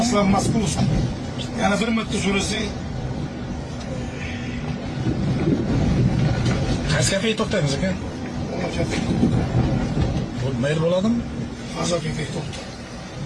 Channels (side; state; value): both; identical; correlation 1.00